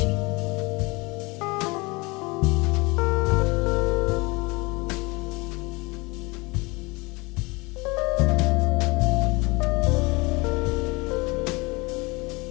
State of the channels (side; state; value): right; quieter; 25.6 dB